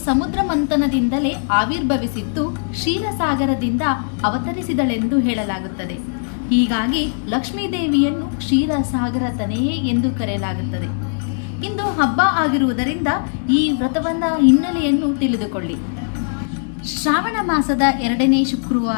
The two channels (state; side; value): silent; right; digital silence